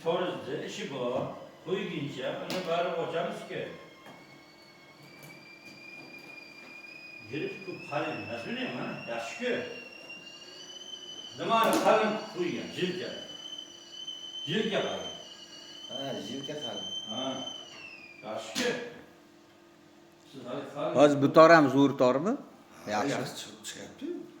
toruzda işi bu. Koyu giyince, onu bari hocamız ki. Girip bu kalın, nasıl bileyim ha? Yaşı ki. Zaman kalın koyuyor, cilke. Cilke kalın. Ha, jilka kalın. Ha, yaşı ki. Siz hadi kalın. Hozir bu tor ham zo'r tormi? Yaxshi Yaxshi. chiqyapti.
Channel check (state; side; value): identical; both; correlation 1.00